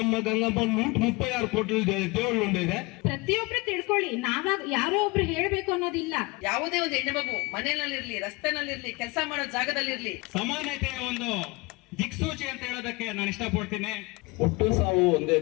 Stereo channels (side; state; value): right; quieter; 25.1 dB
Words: ಗಂಗಮ್ಮ 136 ಕೋಟಿ ದೇವಳು ಇದೆ. ಪ್ರತಿಯೊಬ್ರು ತಿಳ್ಕೊಳ್ಳಿ, ನಾವಾಗ ಯಾರೋ ಒಬ್ರು ಹೇಳ್ಬೇಕು ಅನ್ನೋದಿಲ್ಲ. ಯಾವುದೇ ಒಂದು ಹೆಣ್ಣು ಮಗು ಮನೆಯಲ್ಲಿರ್ಲಿ, ರಸ್ತೆನಲ್ಲಿರ್ಲಿ, ಕೆಲಸ ಮಾಡೋ ಜಾಗದಲ್ಲಿರ್ಲಿ ಸಮಾನತೆಯ ಒಂದು ದಿಕ್ಸೂಚಿ ಅಂತ ಹೇಳೋದಕ್ಕೆ ನಾನು ಇಷ್ಟಪಡ್ತೀನಿ. ಹುಟ್ಟು ಸಾವು ಒಂದೇ